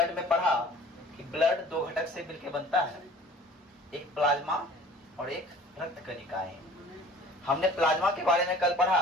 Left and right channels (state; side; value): normal; both; correlation 0.48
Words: में पढ़ा कि ब्लड दो घटक से मिलकर बनता है, एक प्लाज्मा और एक रक्त कणिकाएं। हमने प्लाज्मा के बारे में कल पढ़ा,